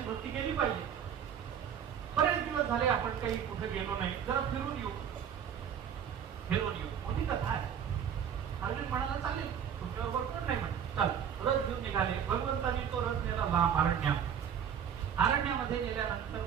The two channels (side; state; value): left; quieter; 8.3 dB